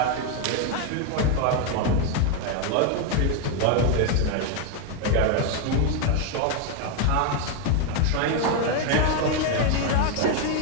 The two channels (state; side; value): different; both; correlation 0.01